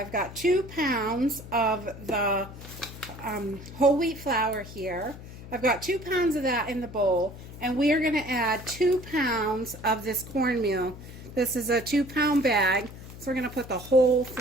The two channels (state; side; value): noise; left; hum, 14 dB below the sound